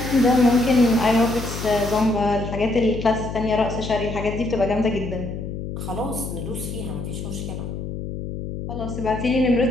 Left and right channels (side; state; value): left; noise; hum, 7 dB below the sound